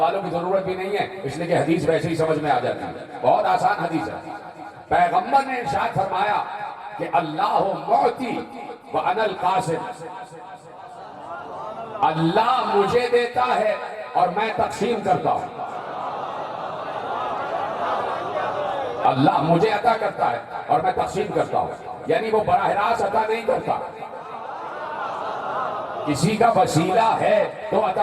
کی ضرورت بھی نہیں ہے اس لیے کہ حدیث ویسے ہی سمجھ میں آ جاتی ہے بہت آسان حدیث ہے پیغمبر نے ارشاد فرمایا کہ اللہ معطی وانا القاسم اللہ مجھے دیتا ہے اور میں تقسیم کرتا ہوں اللہ مجھے عطا کرتا ہے اور میں تقسیم کرتا ہوں یعنی وہ براہ راست عطا نہیں کرتا کسی کا وسیلہ ہے تو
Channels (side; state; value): both; identical; correlation 1.00